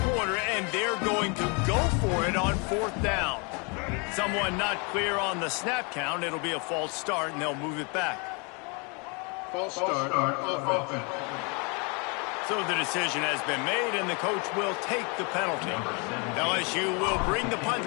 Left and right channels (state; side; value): quieter; right; 32.7 dB